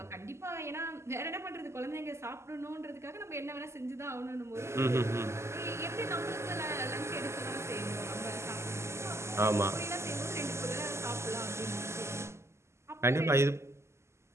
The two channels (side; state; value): left; late; 0.13 ms